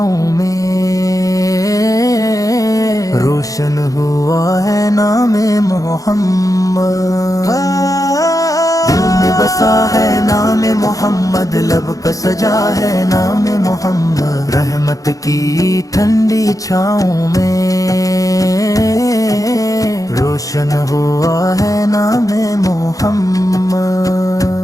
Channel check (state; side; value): late; right; 0.17 ms